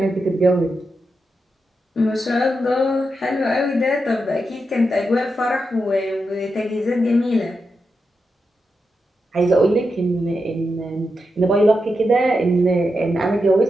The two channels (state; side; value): normal; both; correlation 0.87